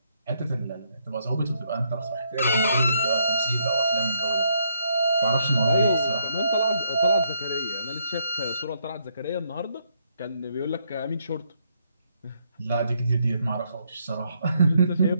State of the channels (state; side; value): inverted; both; correlation -0.74